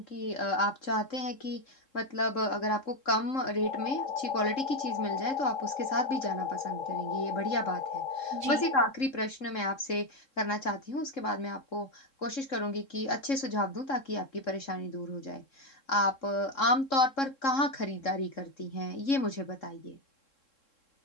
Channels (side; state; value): right; late; 3.7 ms